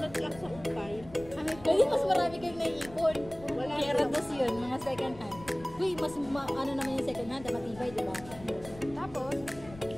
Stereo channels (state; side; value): noise; left; rumble, 18 dB below the sound